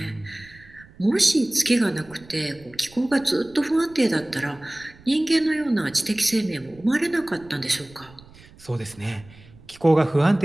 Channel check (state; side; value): noise; right; rumble, 24 dB below the sound